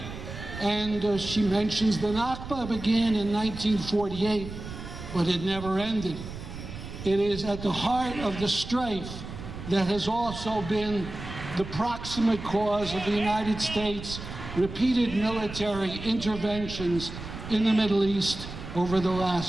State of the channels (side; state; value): right; noise; rumble, 10 dB below the sound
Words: And she mentions the Nakba began in 1948, but it never ended. It is at the heart of the strife that has also been the proximate cause of the United States' repeated military interventions in the Middle East over the